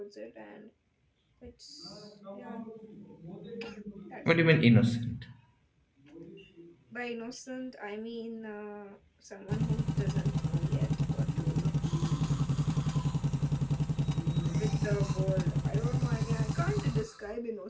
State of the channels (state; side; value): identical; both; correlation 1.00